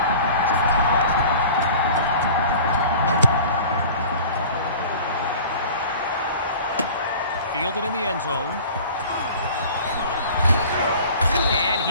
Fielded in the end zone. And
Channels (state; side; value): inverted; both; correlation -0.43